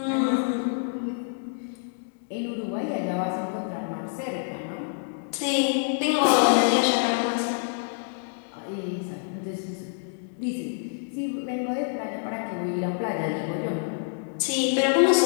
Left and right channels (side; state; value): right; silent; digital silence